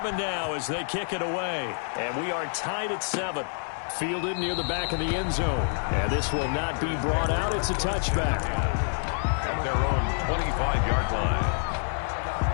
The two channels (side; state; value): right; silent; 60 dB below the other